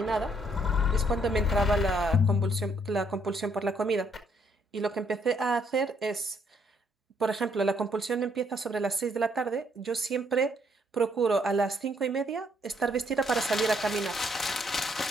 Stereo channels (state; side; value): normal; both; correlation 0.70